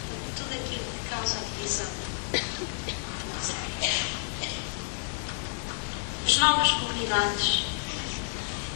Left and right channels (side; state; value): right; silent; 58 dB below the other